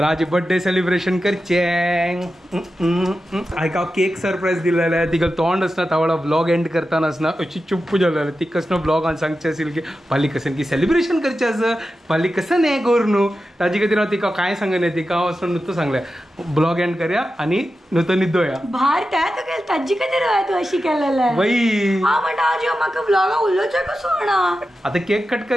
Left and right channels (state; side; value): normal; both; correlation 0.92